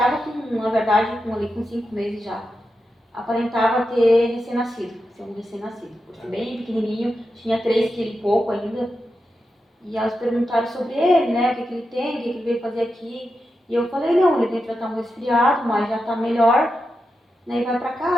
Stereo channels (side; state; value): both; normal; correlation 0.89